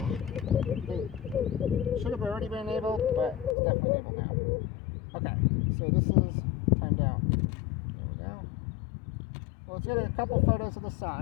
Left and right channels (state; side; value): drops out; right; at 3.6 s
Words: it should have already been enabled, but it's definitely enabled now. Okay, so this is timed out. There we go. Well, let's get a couple photos of the